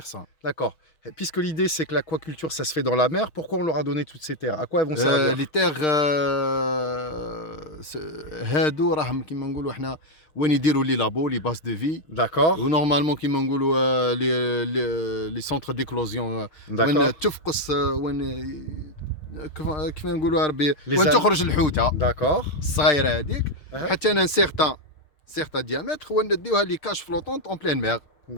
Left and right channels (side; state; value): right; late; 6.5 ms